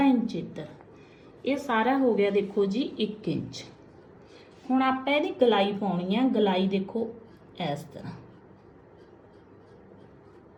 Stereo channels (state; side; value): identical; both; correlation 1.00